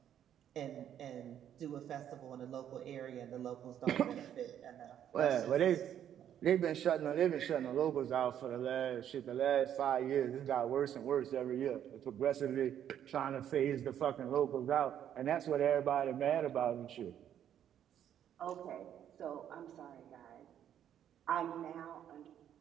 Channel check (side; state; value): left; quieter; 10.0 dB